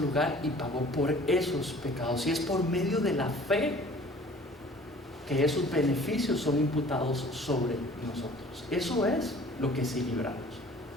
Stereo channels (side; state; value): both; normal; correlation 0.49